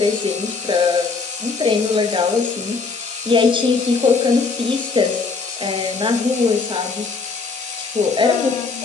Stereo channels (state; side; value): quieter; right; 4.4 dB